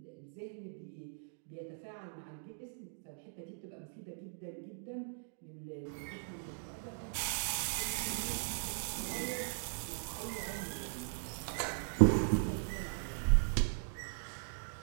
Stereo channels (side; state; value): left; silent; digital silence